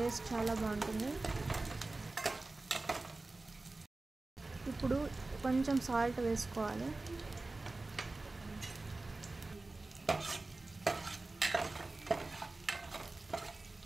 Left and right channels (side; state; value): left; quieter; 3.2 dB